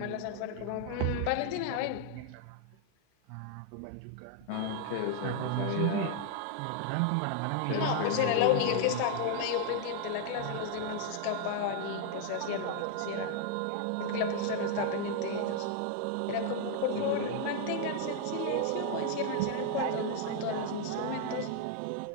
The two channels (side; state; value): both; different; correlation 0.00